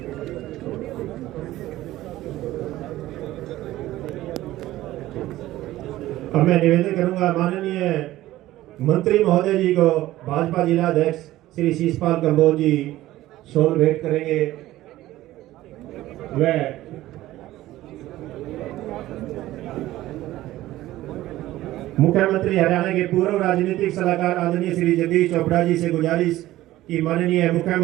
अब मैं निवेदन करूंगा माननीय मंत्री महोदय जी को भाजपा जिला अध्यक्ष श्री शीशपाल कंबोज जी शॉल भेंट करेंगे। वह मुख्यमंत्री हरियाणा के पूर्व राजनीतिक सलाहकार आदरणीय श्री जगदीश चोपड़ा जी से गुजारिश कि माननीय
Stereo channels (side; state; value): left; quieter; 15.7 dB